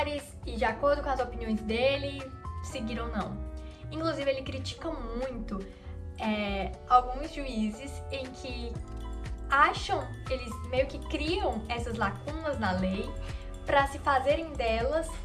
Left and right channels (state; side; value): identical; both; correlation 1.00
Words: e, de acordo com as opiniões dele, seguir ou não. Inclusive, ele critica muito alguns juízes em que eles meio que criam essas lacunas na lei pra se fazerem delas